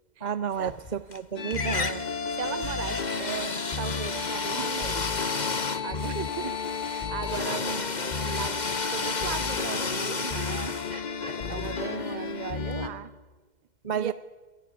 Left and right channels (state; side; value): late; right; 2.1 ms